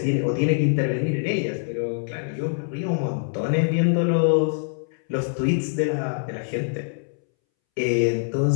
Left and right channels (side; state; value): right; silent; 63 dB below the other